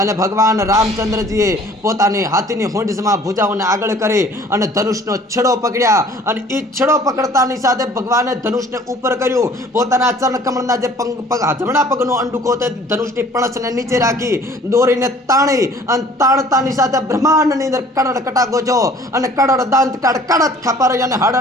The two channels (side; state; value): both; normal; correlation 0.52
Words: ભગવાન રામચંદ્રજીએ પોતાની હાથીની હોંડમાં ભુજાઓને આગળ કરી અને ધનુષનો છેડો પકડ્યા અને એ છેડો પકડતાની સાથે ભગવાને ધનુષને ઉપર કર્યું. પોતાના ચરણ કમળના જે જમણા પગનો અંડુકો તે ધનુષની પણસને નીચે રાખી દોરીને તાણી અને તાણતાની સાથે બ્રહ્માંડની અંદર કડડ કટાકો છો અને કડડ દાંત કાઢ કડદ ખપર અને